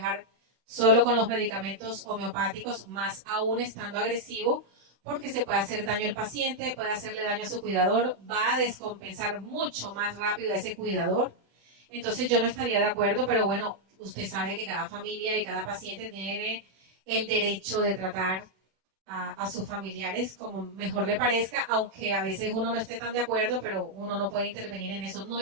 solo con los medicamentos homeopáticos, más aún estando agresivo, porque se puede hacer daño al paciente, puede hacerle daño a su cuidador, va a descompensar mucho más rápido a ese cuidador. Entonces yo no estaría de acuerdo, pero bueno, usted sabe que cada familia y cada paciente tiene el derecho de tratar a sus familiares como mejor le parezca, aunque a veces uno no esté tan de acuerdo, pero uno no puede intervenir en eso. No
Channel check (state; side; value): late; left; 35 ms